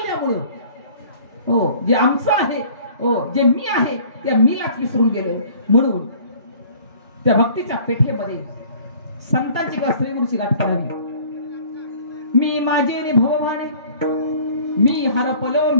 हो जे आमचं आहे, हो जे मी आहे त्या मीलाच विसरून गेले. म्हणून त्या भक्तीच्या पेठेमध्ये संतांची किंवा श्रीगुरूची गाठ करावी. मी माझे नि भवभाणे, मी हरपलो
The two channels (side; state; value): both; inverted; correlation -0.51